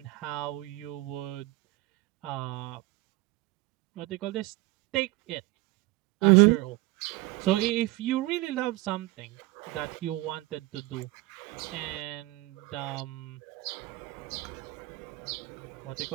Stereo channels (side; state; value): left; quieter; 19.8 dB